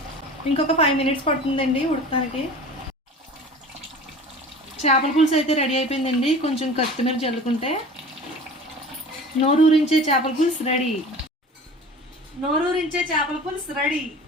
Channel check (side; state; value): both; normal; correlation 0.40